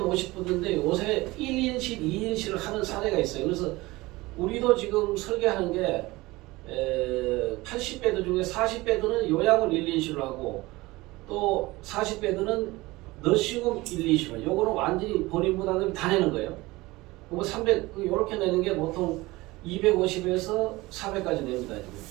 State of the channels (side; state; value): left; quieter; 20.6 dB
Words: 50배도인데 요새 1인실, 2인실을 하는 사례가 있어요. 그래서 우리도 지금 설계하는 게 80배도 중에 40배도는 요양원 1인실로 하고 또 40배도는 너시홈 1인실. 요거는 완전히 본인 부담을 다 내는 거예요. 그거 300, 요렇게 내는 게 보통 250에서 400까지 냅니다. 지금.